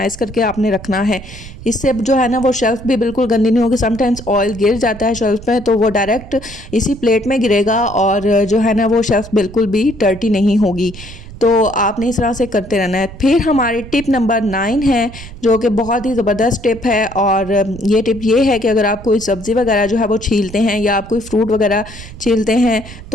करके आपने रखना है। इससे जो है ना वो शेल्फ भी बिल्कुल गंदी नहीं होगी। समटाइम्स ऑयल गिर जाता है शेल्फ पे तो वो डायरेक्ट इसी प्लेट में गिरेगा और जो है ना वो शेल्फ बिल्कुल भी डर्टी नहीं होगी। तो आपने इस तरह से करते रहना है। फिर हमारी टिप नंबर 9 है जो कि बहुत ही ज़बरदस्त टिप है, और ये टिप ये है कि अगर आप कोई सब्ज़ी वगैरह जो है वो छीलते हैं या आप कोई फ्रूट वगैरह छीलते हैं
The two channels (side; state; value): right; noise; rumble, 15 dB below the sound